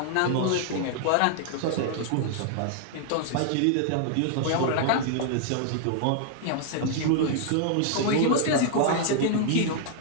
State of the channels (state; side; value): different; both; correlation 0.00